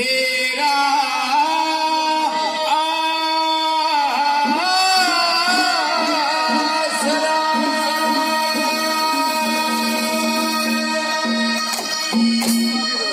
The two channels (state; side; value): identical; both; correlation 1.00